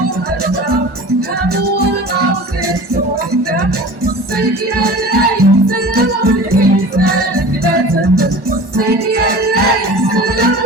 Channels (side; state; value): left; late; 1.1 ms